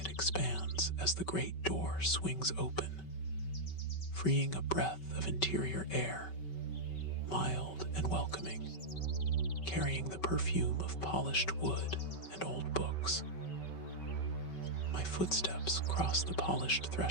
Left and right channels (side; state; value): right; late; 5.3 ms